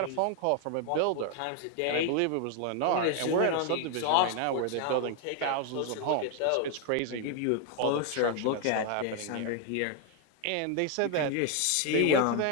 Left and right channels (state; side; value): different; both; correlation 0.00